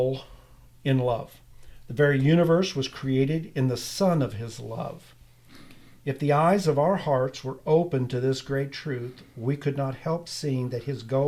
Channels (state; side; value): identical; both; correlation 1.00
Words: in love. The very universe was created in the Son of His love. If the eyes of our hearts were open to this great truth, we could not help seeing that His